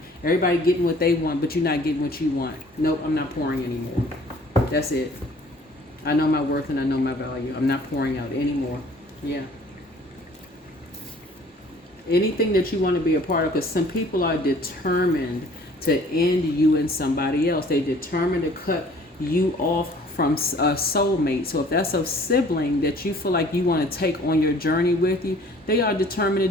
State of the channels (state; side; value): normal; both; correlation 0.53